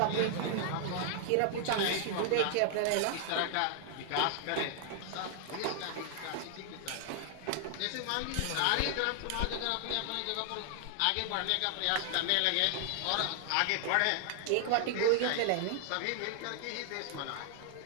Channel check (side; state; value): both; different; correlation 0.00